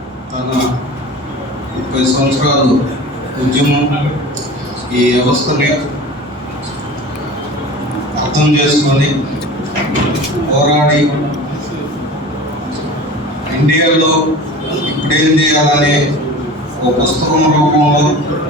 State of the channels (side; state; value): both; normal; correlation 0.37